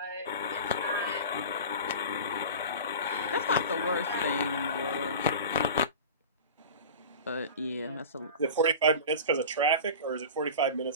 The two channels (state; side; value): inverted; both; correlation -0.33